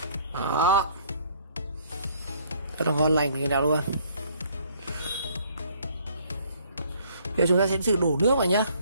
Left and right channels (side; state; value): both; inverted; correlation -0.60